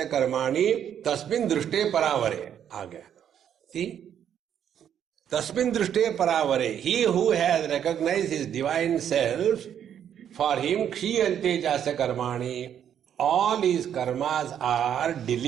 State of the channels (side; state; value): left; quieter; 9.3 dB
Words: कर्माणि तस्मिन् दृष्टे परावरे. आ गया. See? Tasmin drishte paravare. He who has recognized his divine self, for him kshiyante jasya karmani. All his karmas are